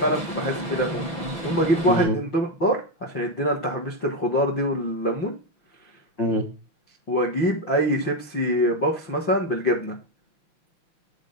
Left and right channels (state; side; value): late; right; 6.1 ms